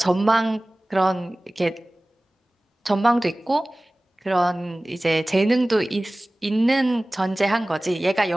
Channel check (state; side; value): normal; both; correlation 0.98